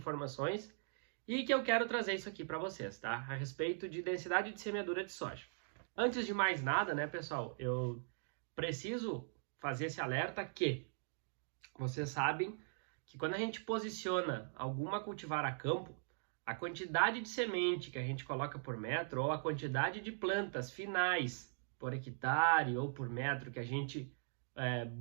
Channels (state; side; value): silent; left; digital silence